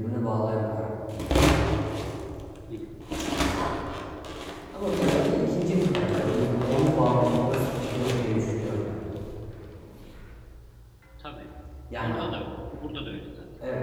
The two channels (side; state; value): both; identical; correlation 1.00